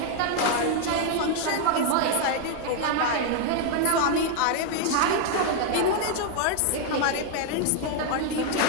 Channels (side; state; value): both; different; correlation 0.00